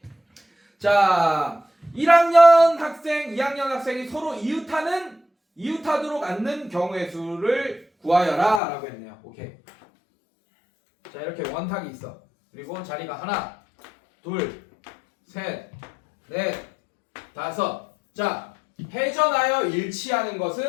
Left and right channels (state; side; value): drops out; right; at 8.6 s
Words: 자 1학년 학생 2학년 학생이 서로 이웃하도록 앉는 경우의 수를 구하여라 라고 했네요. 오케이. 자 이렇게 원탁이 있어. 그리고 자리가 하나 둘 셋 넷 5. 자, 회전하여 일치하는